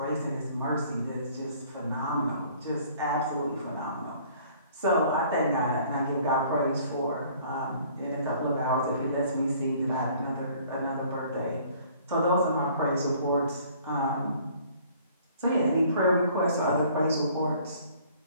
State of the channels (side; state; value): both; inverted; correlation -0.55